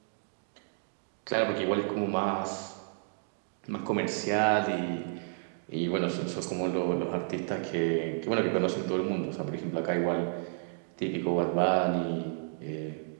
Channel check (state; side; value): silent; left; digital silence